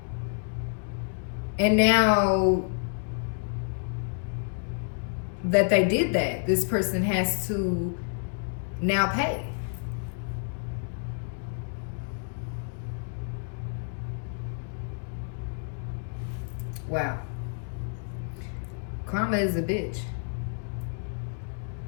And now that they did that, this person has to now pay. Wow. Karma is a bitch.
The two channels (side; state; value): right; silent; digital silence